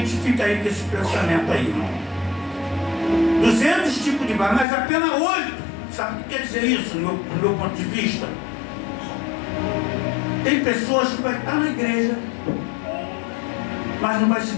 fica aí com esse pensamento aí, irmão. 200 tipos de barro, mas apenas 8. Sabe o que quer dizer isso, no meu ponto de vista? Tem pessoas que vão estar na igreja, mas não vai se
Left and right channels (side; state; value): right; drops out; at 4.7 s